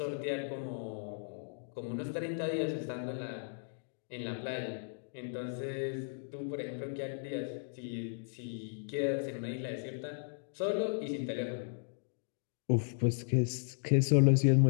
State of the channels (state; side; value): silent; right; digital silence